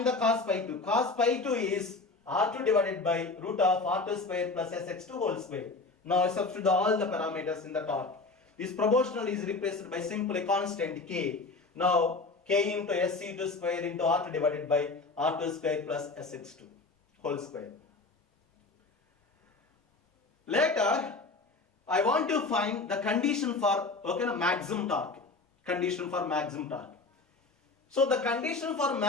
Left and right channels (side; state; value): right; quieter; 3.7 dB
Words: the cos pi 2. Cos pi 2 is R2 divided by root of R2 square plus Sx2 whole square. Now I substitute all the parameters in the torque. This proportional is replaced by simply constant K. Now K into SC2 square into R2 divided by R2 square plus Sx2 whole square. Later I want to find the condition for maximum torque. Condition for maximum torque. So the condition for